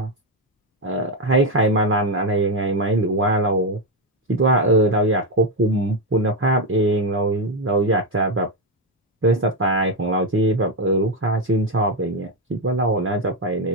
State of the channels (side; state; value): both; normal; correlation 0.08